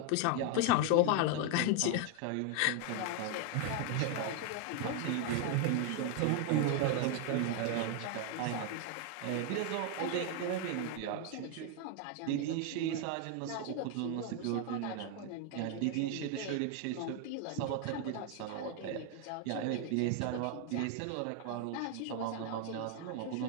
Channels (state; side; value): different; both; correlation 0.01